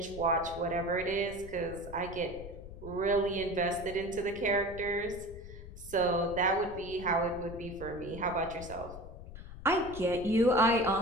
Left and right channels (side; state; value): left; noise; rumble, 13 dB below the sound